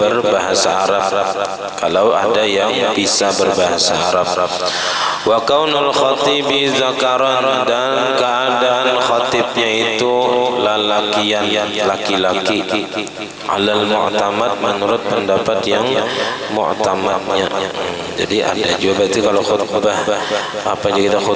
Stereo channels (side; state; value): both; identical; correlation 1.00